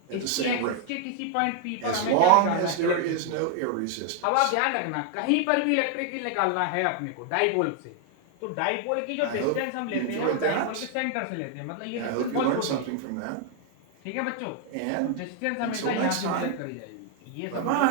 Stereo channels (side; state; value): both; different; correlation 0.00